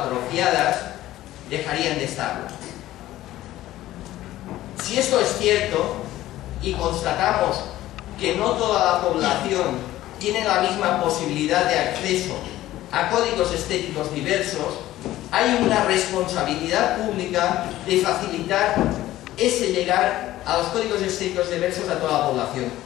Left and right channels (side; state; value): right; quieter; 15.0 dB